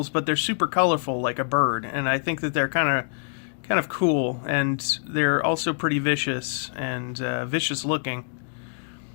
but they're super colorful like a bird, and I think that they're kind of cool, and they're also pretty vicious and vicious looking.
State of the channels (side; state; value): right; silent; digital silence